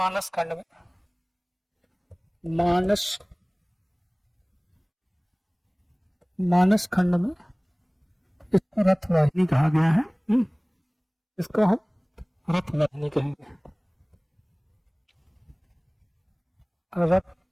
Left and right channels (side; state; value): both; identical; correlation 1.00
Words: खंड में इसको रथवाहिनी कहा गया है। इसको हम रथवाहिनी कहेंगे,